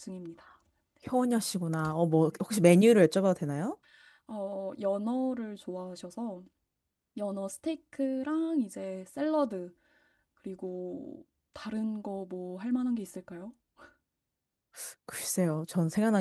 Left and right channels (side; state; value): both; identical; correlation 1.00